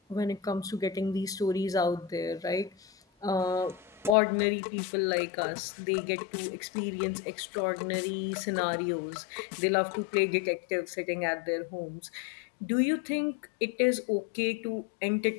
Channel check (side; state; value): right; drops out; at 4.2 s